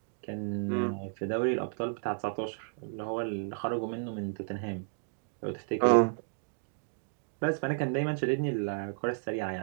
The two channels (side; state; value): left; silent; digital silence